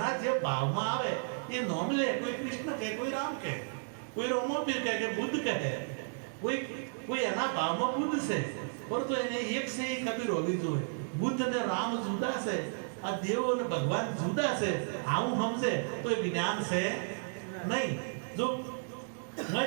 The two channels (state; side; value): silent; left; digital silence